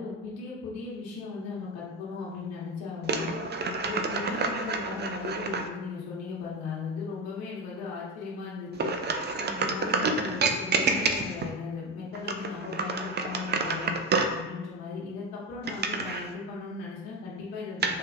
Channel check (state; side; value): normal; both; correlation 0.17